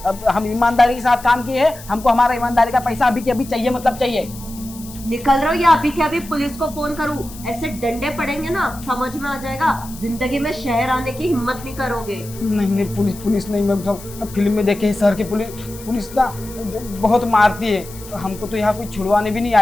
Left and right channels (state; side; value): noise; left; hiss, 17 dB below the sound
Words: अब हम ईमानदारी के साथ काम किए हैं, हमको हमारा ईमानदारी का पैसा अभी के अभी चाहिए, मतलब चाहिए। निकल रहा हूँ या अभी के अभी पुलिस को फोन करूँ? ऐसे डंडे पड़ेंगे ना, समझ में आ जाएगा। जिंदगी में शहर आने की हिम्मत नहीं करोगे। नहीं, पुलिस नहीं मैम साहब, फिल्म में देखे हैं शहर की पुलिस ना जो बहुत मारती है, हमको तो यहाँ कोई छुड़वाने भी नहीं